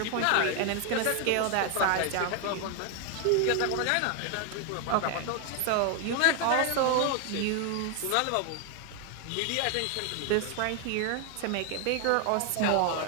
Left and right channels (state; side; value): different; both; correlation 0.01